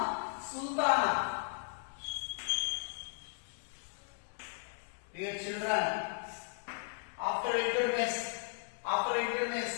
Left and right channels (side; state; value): right; silent; digital silence